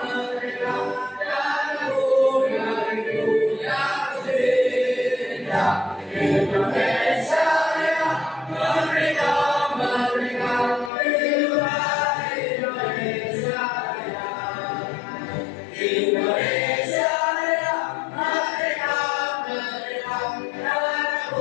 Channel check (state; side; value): drops out; right; at 10.9 s